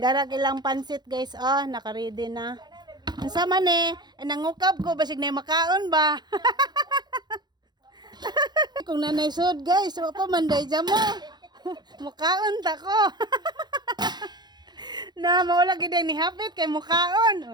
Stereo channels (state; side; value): late; left; 0.21 ms